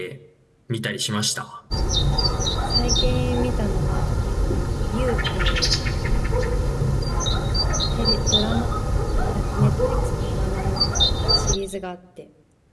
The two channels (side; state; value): both; identical; correlation 1.00